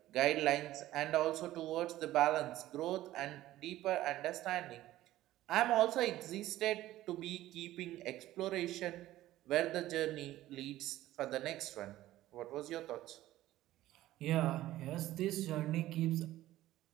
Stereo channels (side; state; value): left; quieter; 15.0 dB